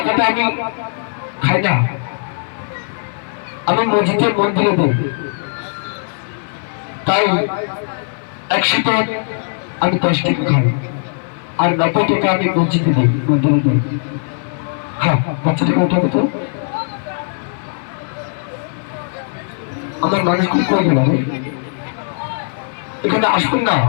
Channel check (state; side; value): silent; right; 56 dB below the other